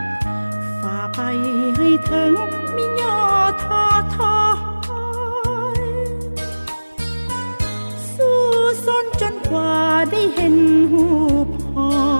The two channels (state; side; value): inverted; both; correlation -1.00